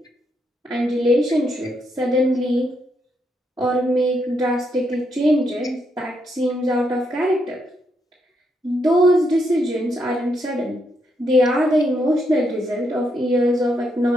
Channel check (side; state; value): both; normal; correlation 0.78